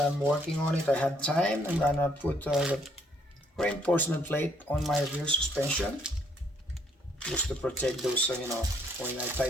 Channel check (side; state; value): both; normal; correlation 0.67